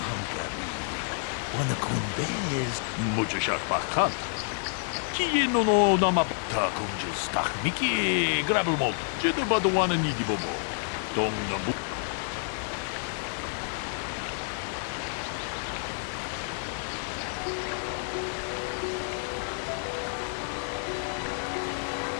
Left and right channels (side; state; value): right; silent; digital silence